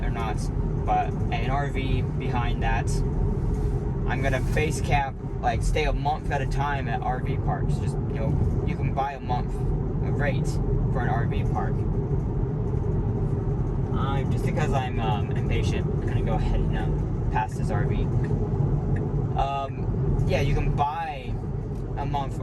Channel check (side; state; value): both; identical; correlation 1.00